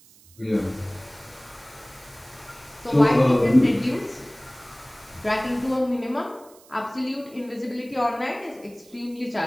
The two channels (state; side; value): noise; right; hiss, 25 dB below the sound